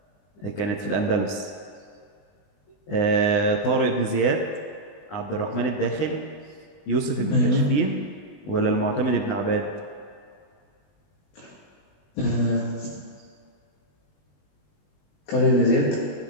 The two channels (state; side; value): late; right; 20 ms